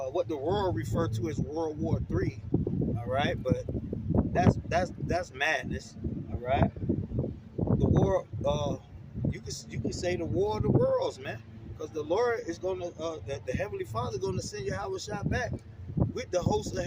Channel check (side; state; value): both; identical; correlation 1.00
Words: the world referred to as World War III. All right, but that's madness. All right. The war, you can say the war of the worlds, man, because the Lord is gonna, the Heavenly Father is gonna send Yahweh shot back with the hosts of